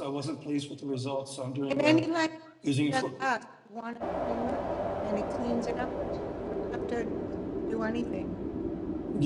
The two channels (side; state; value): both; identical; correlation 1.00